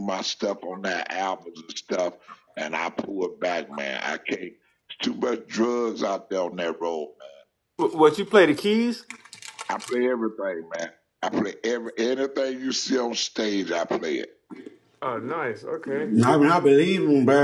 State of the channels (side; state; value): both; identical; correlation 1.00